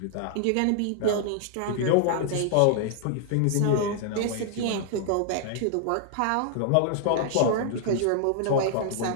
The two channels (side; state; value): both; different; correlation 0.00